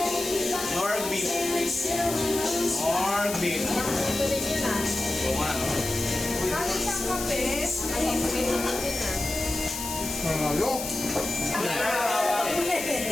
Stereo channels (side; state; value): left; noise; hiss, 6 dB below the sound